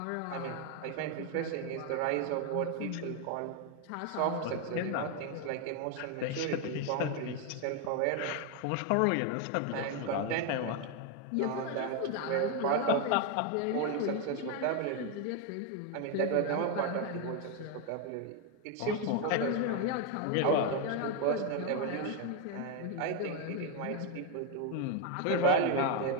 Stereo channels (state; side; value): different; both; correlation 0.01